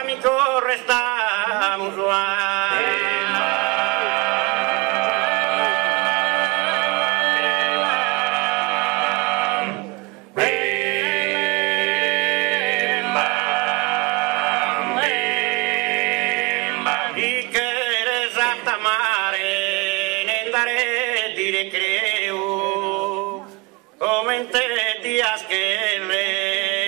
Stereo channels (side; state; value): left; quieter; 25.9 dB